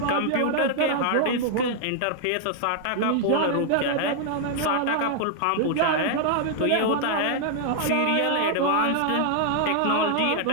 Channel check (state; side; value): different; both; correlation 0.00